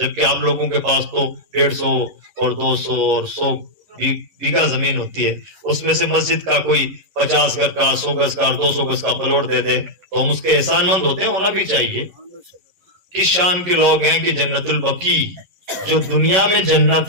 آپ لوگوں کے پاس تو 150 اور 200 اور 100 بیگھا زمین ہوتی ہے. اس میں سے مسجد کا کوئی 50 گز کا, 100 گز کا, 200 گز کا پلاٹ دے دے تو ہم اس کے احسان مند ہوتے ہیں, ہونا بھی چاہیے. کس شان کے لوگ ہیں کہ جنت البقیع جو دنیا میں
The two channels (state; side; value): late; left; 11 ms